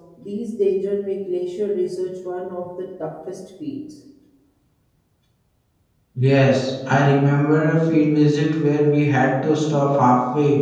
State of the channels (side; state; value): both; identical; correlation 1.00